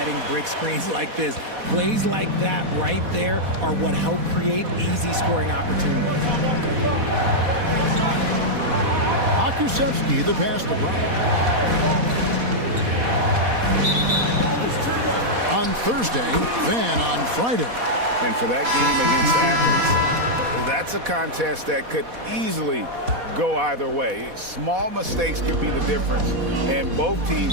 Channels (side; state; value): left; late; 4.1 ms